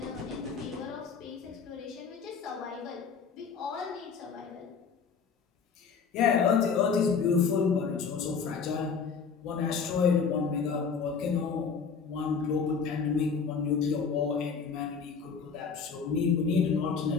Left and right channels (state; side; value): quieter; right; 5.8 dB